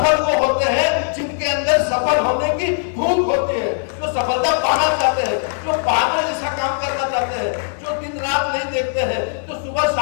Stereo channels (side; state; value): right; silent; digital silence